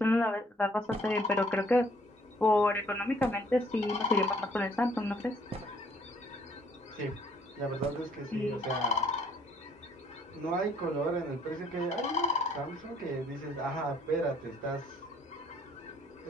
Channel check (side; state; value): both; normal; correlation 0.62